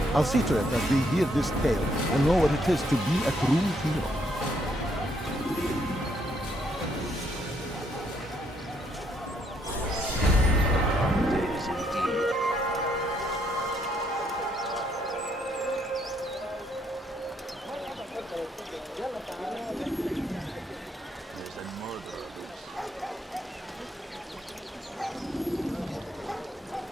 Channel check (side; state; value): both; normal; correlation 0.72